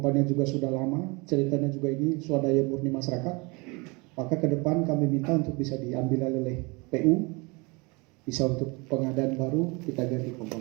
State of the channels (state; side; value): quieter; left; 27.4 dB